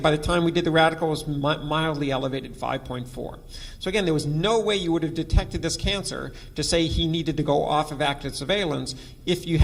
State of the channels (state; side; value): identical; both; correlation 1.00